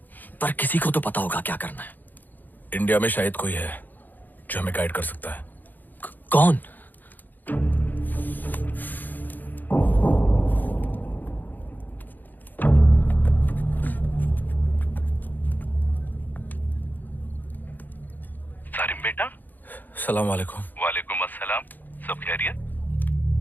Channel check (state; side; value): late; right; 0.086 ms